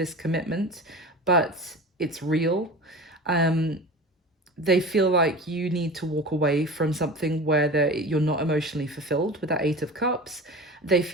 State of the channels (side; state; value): both; normal; correlation 0.34